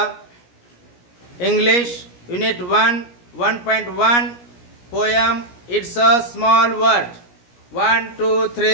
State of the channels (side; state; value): right; late; 17 ms